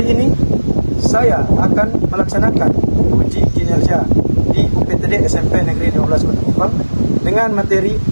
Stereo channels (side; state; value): both; inverted; correlation -1.00